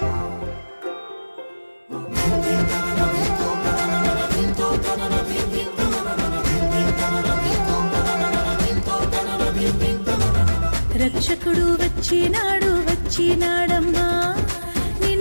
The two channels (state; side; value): inverted; both; correlation -1.00